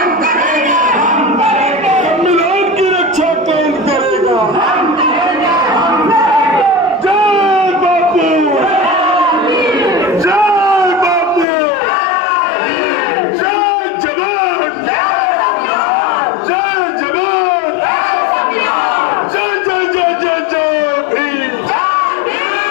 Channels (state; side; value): drops out; right; at 11.5 s